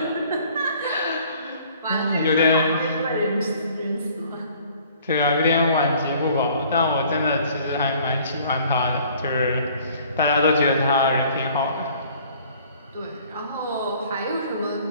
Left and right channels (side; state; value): both; inverted; correlation -0.55